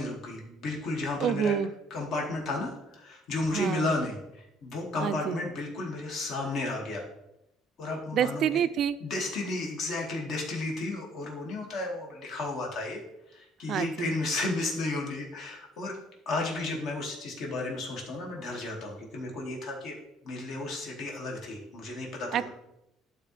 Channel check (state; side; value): normal; both; correlation 0.61